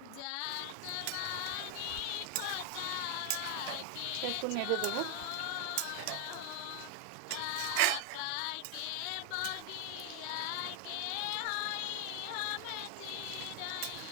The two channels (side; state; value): both; different; correlation 0.00